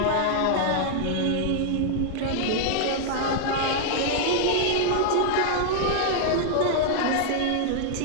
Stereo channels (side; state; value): both; different; correlation -0.01